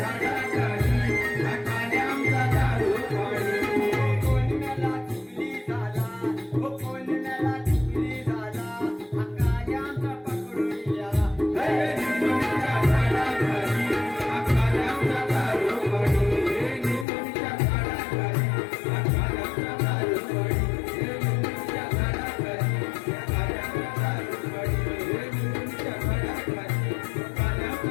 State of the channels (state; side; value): drops out; right; at 17.1 s